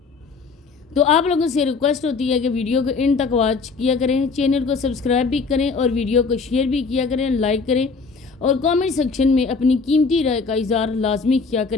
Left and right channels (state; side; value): quieter; right; 4.6 dB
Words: तो आप लोगों से रिक्वेस्ट होती है कि वीडियो को इन तक वॉच किया करें, चैनल को सब्सक्राइब भी करें और वीडियो को शेयर भी किया करें, लाइक करें और कमेंट सेक्शन में अपनी कीमती राय का इज़हार लाजमी किया